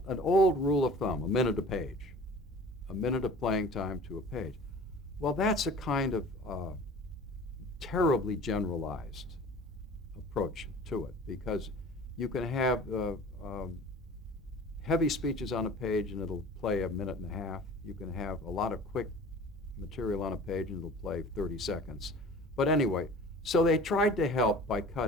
rule of thumb, a minute a page, a minute of playing time to a page. Well, that's a kind of terribly generalized approach to it, because you can have heavy speeches on a page and it'll play a minute and a half. You can have a lot of quick material on a page and it'll play 30 seconds. But anyway, so they tried to help by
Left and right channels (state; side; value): normal; both; correlation 0.43